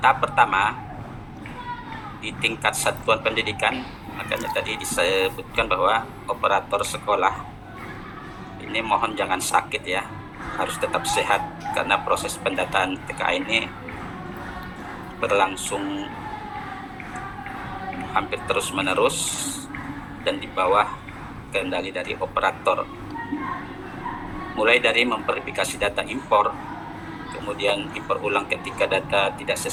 pertama di tingkat satuan pendidikan, makanya tadi disebutkan bahwa operator sekolah ini mohon jangan sakit ya, harus tetap sehat karena proses pendataan TKA ini berlangsung hampir terus-menerus dan di bawah kendali dari operator. Mulai dari memverifikasi data impor, kemudian impor ulang ketika data tidak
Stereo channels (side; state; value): both; identical; correlation 1.00